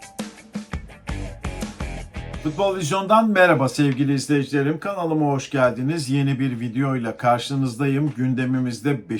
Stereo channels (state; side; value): identical; both; correlation 1.00